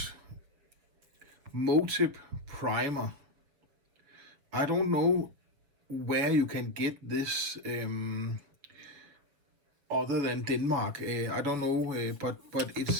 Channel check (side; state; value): left; late; 7.3 ms